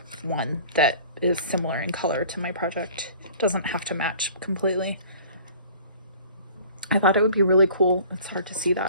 one that is similar in color to my project. Doesn't have to match completely. I thought it would be really cool. It's hard to see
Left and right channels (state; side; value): inverted; both; correlation -0.48